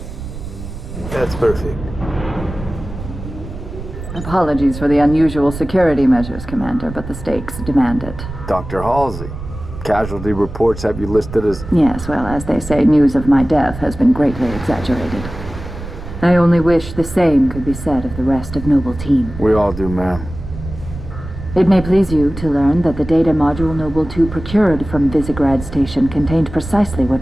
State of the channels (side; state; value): right; noise; rumble, 11 dB below the sound